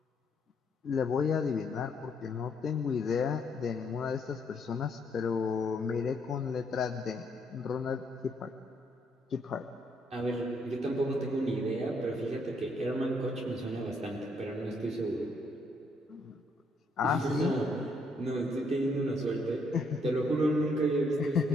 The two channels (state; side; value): normal; both; correlation 0.71